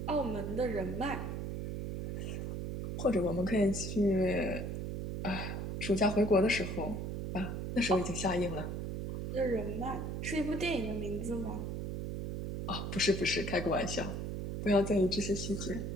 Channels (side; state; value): right; noise; hum, 4 dB below the sound